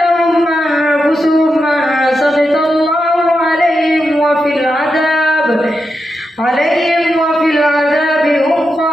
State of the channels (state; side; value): normal; both; correlation 0.87